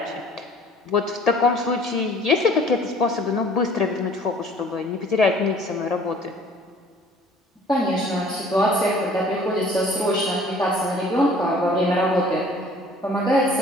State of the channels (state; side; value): normal; both; correlation 0.52